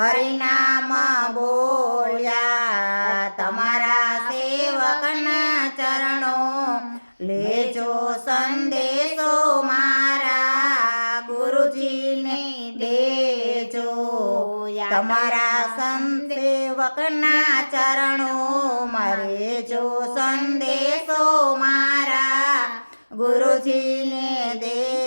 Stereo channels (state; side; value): inverted; both; correlation -1.00